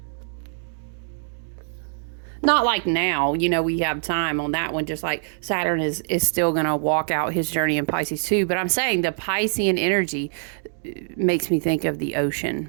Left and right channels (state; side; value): silent; left; digital silence